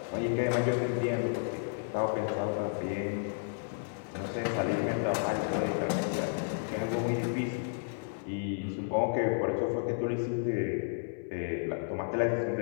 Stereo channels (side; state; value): right; silent; 56 dB below the other